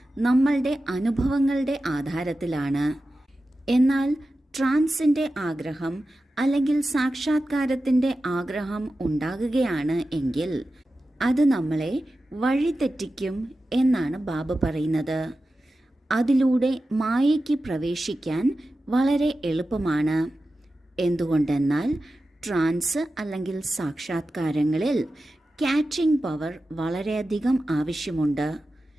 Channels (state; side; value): normal; both; correlation 0.93